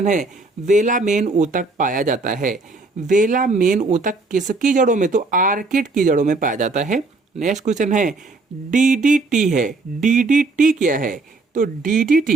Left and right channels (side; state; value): left; quieter; 3.5 dB